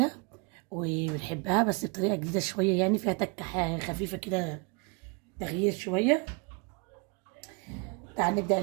وبنحبها بس بطريقة جديدة شوية، يعني فيها تكة خفيفة كده، تغيير شوية. تعالوا نبدأ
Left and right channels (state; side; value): quieter; left; 30.7 dB